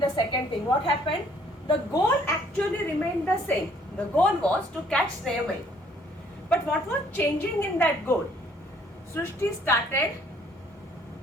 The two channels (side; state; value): both; normal; correlation 0.61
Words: second thing, what happened? The goal actually remained the same. The goal was to catch Snehamayi. But what was changing in that goal? Srishti